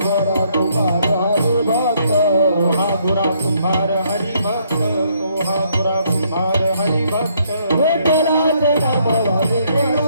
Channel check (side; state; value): both; inverted; correlation -0.69